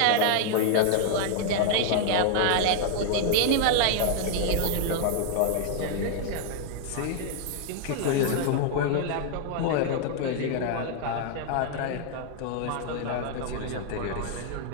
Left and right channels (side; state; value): both; different; correlation 0.00